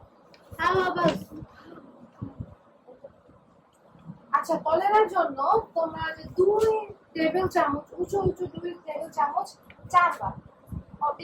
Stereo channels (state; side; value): identical; both; correlation 1.00